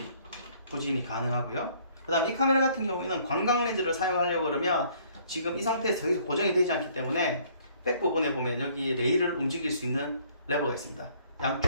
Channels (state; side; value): inverted; both; correlation -0.60